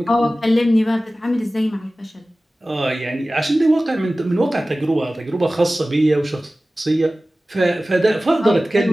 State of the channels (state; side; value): normal; both; correlation 0.97